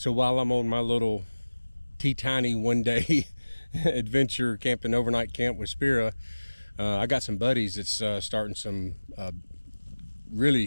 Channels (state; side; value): inverted; both; correlation -1.00